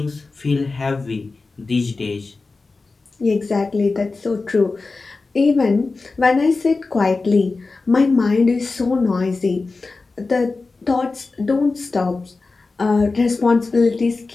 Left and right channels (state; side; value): quieter; right; 3.8 dB